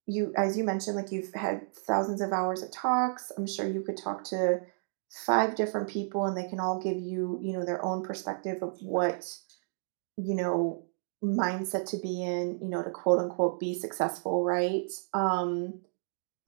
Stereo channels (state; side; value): silent; left; digital silence